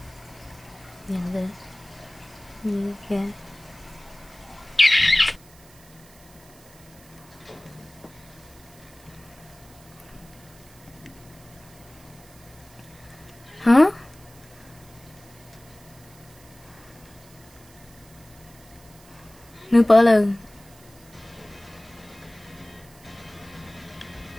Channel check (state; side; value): noise; right; hiss, 24 dB below the sound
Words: Nhận được. Như kìa. Hả? Nữ bỡ lần.